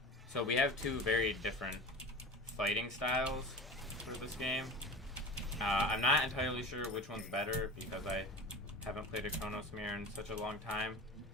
So we have two very different fighting styles for this game. I'm not entirely sure which one's better because I haven't played a CHRONOS mirror in such a long time.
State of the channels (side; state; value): both; normal; correlation 0.32